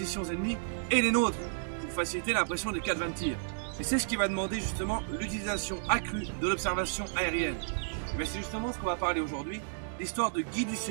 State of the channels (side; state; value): left; silent; digital silence